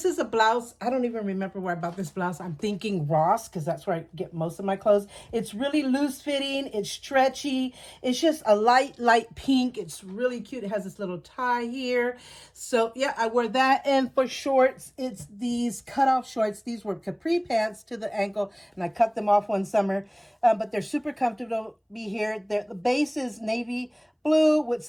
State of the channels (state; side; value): identical; both; correlation 1.00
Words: is a blouse. I don't even remember where I bought this blouse. I'm thinking Ross, because that's where I get most of my clothes. It's really loose fitting. It's stretchy. It's just a light pink. It's really cute. It has this little tie here. So yeah, I wear that. And for shorts, it's these cutoff shorts. These were capri pants to the ankle, and I cut them off one summer. But they're super comfortable to be here. The base is navy blue with